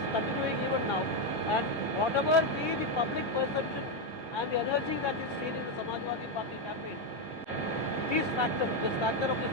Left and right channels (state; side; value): normal; both; correlation 0.05